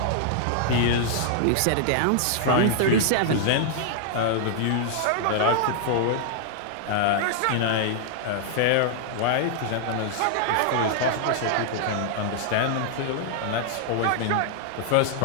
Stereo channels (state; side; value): different; both; correlation -0.01